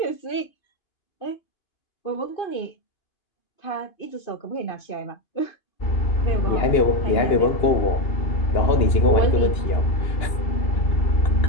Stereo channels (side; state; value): right; late; 2.9 ms